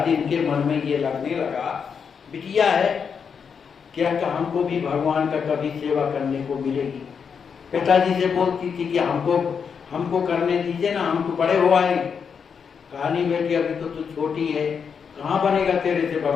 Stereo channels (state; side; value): quieter; right; 6.5 dB